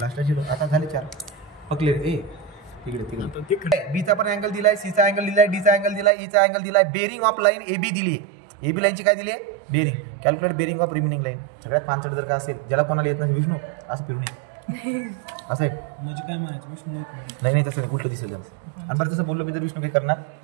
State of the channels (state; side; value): drops out; left; at 6.1 s